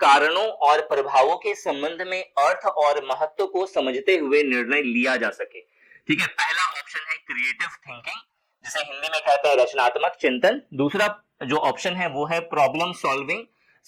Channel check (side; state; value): both; identical; correlation 1.00